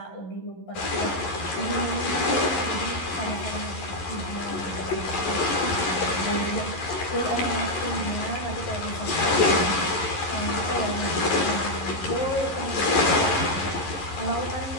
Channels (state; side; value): late; right; 11 ms